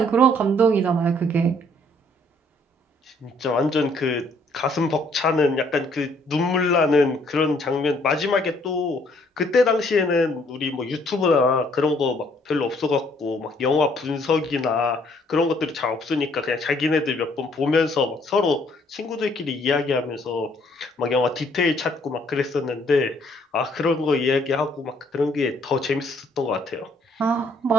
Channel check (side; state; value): both; normal; correlation 0.65